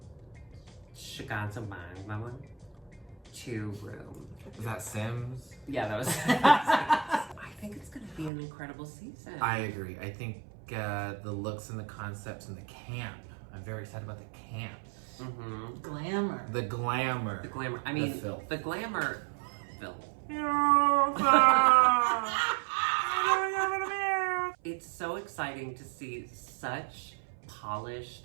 Shiganza Mama to Room. Is that Sims? Yeah, that was. I think it's going to be an incredible season. I agree. I think the looks and the concepts and the camp. I'm very excited about the camp. Mm-hmm. Glamour. The glamour. The glamour. I mean, filth. the glamour. Phil. It's so exciting to see such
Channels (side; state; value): left; drops out; at 8.3 s